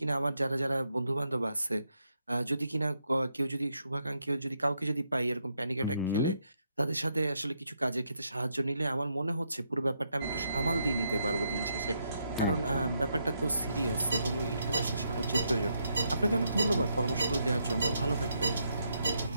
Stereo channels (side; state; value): both; inverted; correlation -0.78